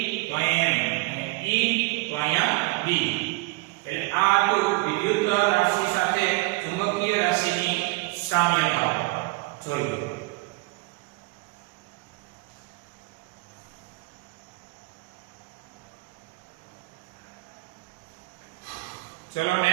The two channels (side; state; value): left; quieter; 23.5 dB